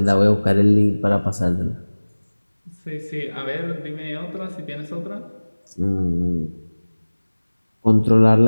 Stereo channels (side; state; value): both; inverted; correlation -1.00